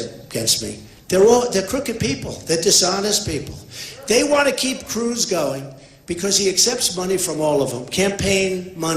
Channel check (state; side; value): identical; both; correlation 1.00